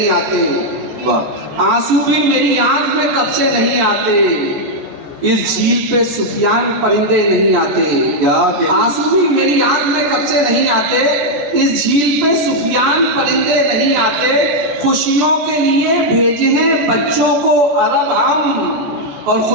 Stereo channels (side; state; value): left; late; 14 ms